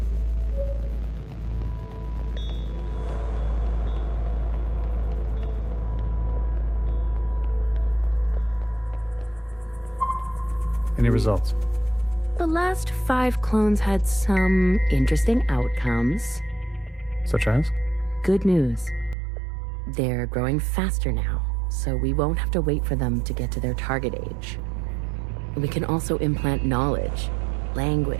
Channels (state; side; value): drops out; left; at 19.2 s